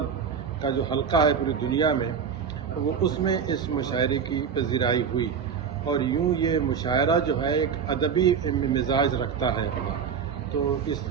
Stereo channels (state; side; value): quieter; left; 6.9 dB